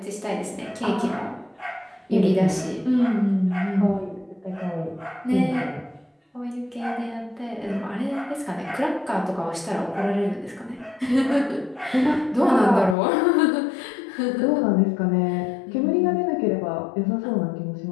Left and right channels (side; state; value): right; drops out; at 13.0 s